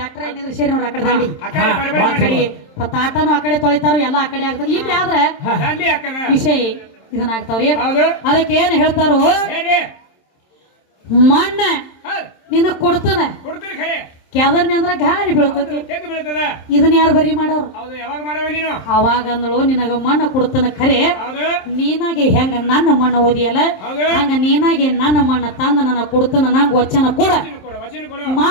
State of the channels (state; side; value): late; right; 27 ms